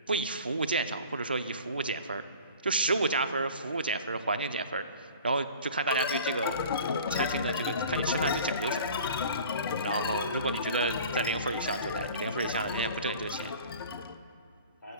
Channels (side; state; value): both; inverted; correlation -0.43